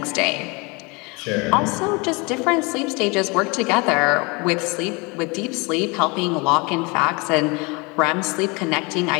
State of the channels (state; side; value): quieter; right; 28.0 dB